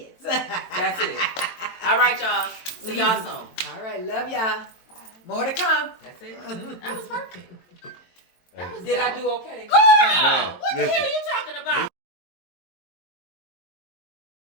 That's it. All right, y'all. See y'all soon. All right. Love y'all. More to come. That's it. That was perfect. Did I do okay? Girl, what the hell are you talking about?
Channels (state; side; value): late; right; 22 ms